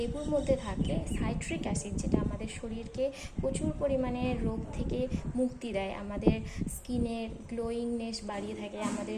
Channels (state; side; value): identical; both; correlation 1.00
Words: মধ্যে থাকে সাইট্রিক অ্যাসিড, যেটা আমাদের শরীরকে প্রচুর পরিমাণে রোগ থেকে মুক্তি দেয়, আমাদের স্কিনের গ্লোয়িংনেস বাড়িয়ে থাকে,